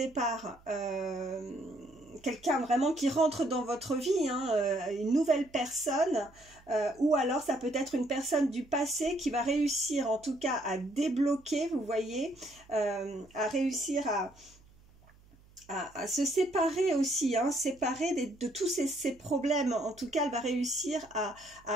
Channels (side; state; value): right; noise; hum, 27 dB below the sound